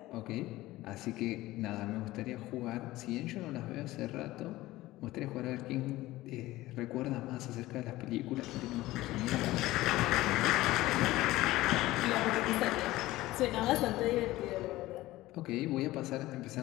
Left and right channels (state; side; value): quieter; right; 17.4 dB